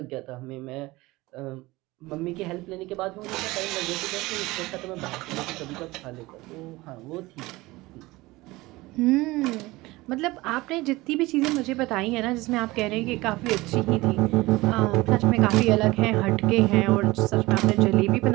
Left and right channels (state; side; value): quieter; left; 20.5 dB